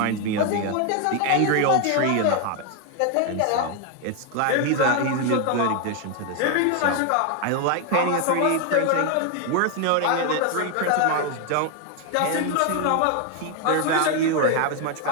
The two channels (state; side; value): different; both; correlation 0.01